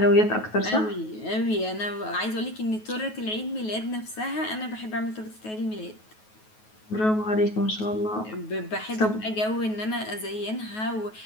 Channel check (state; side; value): late; right; 9.3 ms